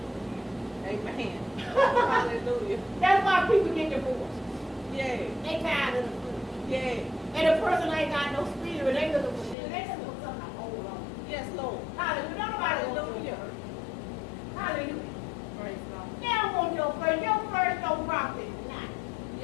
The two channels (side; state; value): right; drops out; at 9.6 s